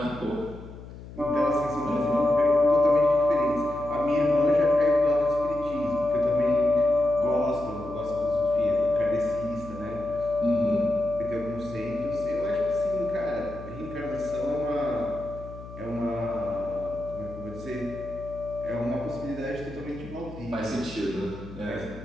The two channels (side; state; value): left; noise; hum, 15 dB below the sound